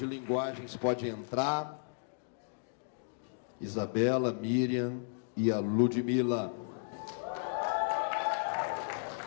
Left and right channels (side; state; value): right; silent; digital silence